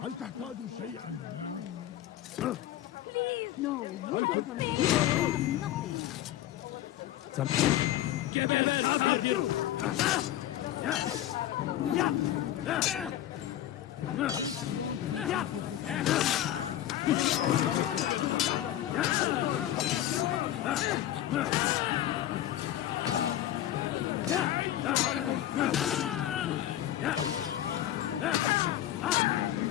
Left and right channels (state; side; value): quieter; right; 12.7 dB